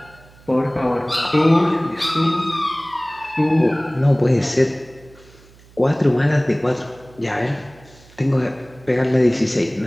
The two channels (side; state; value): right; noise; hum, 25 dB below the sound